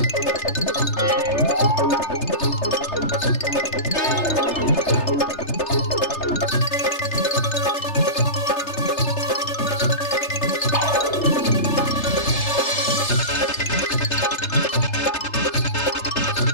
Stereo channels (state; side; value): late; right; 3.3 ms